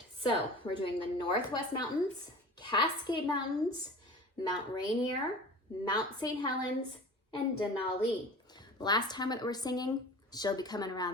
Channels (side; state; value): both; normal; correlation 0.39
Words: so we're doing the Northwest Mountains, Cascade Mountains, Mount Rainier, Mount St. Helens, and Denali. Last time that we're singing, she'll be coming